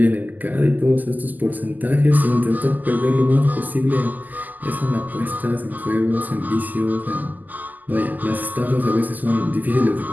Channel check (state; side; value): late; left; 0.083 ms